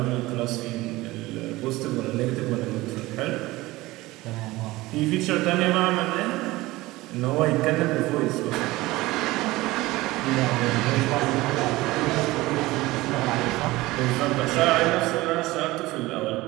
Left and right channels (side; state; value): left; quieter; 19.3 dB